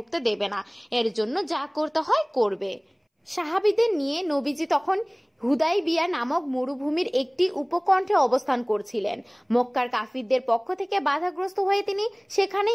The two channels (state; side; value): identical; both; correlation 1.00